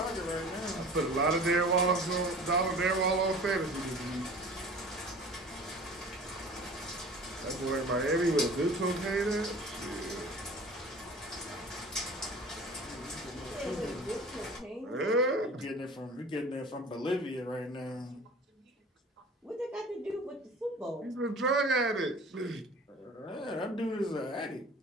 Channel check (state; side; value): normal; both; correlation 0.42